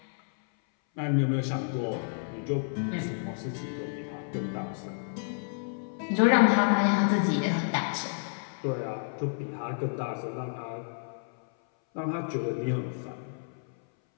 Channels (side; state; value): right; silent; 58 dB below the other